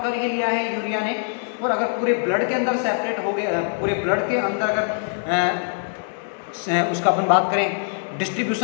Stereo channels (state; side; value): silent; right; 63 dB below the other